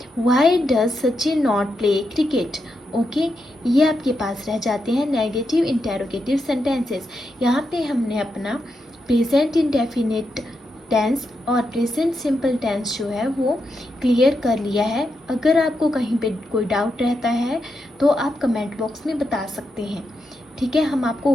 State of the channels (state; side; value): normal; both; correlation 0.84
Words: why does Sachin not play cricket, okay. ये आपके पास रह जाते हैं नेगेटिव इंटेरोगेटिव सेंटेंसेस। यहाँ पे हमने अपना प्रेजेंट इंडेफिनिट टेंस और प्रेजेंट सिंपल टेंस जो है वो क्लियर कर लिया है। अगर आपको कहीं पे कोई डाउट रहता है तो आप कमेंट बॉक्स में बता सकते हैं, ठीक है, हम आपको